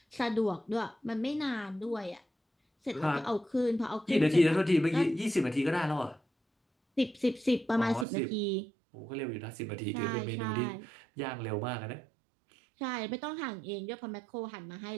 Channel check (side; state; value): left; drops out; at 8.1 s